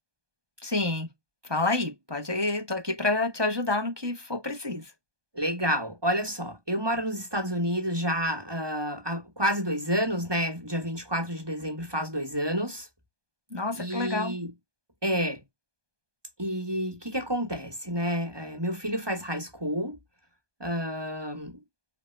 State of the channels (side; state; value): left; late; 1.2 ms